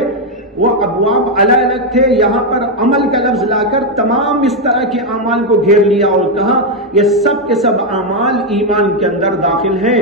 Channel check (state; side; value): normal; both; correlation 0.03